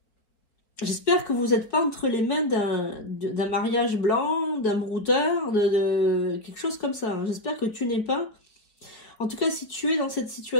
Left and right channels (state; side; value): late; right; 4.7 ms